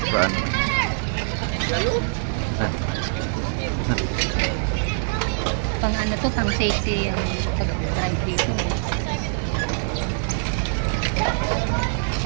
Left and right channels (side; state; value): left; silent; digital silence